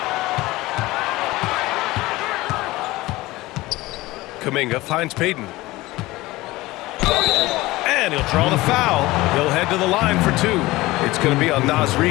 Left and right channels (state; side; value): quieter; right; 19.3 dB